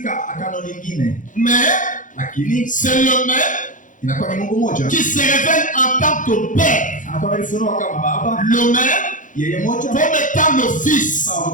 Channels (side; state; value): right; late; 0.37 ms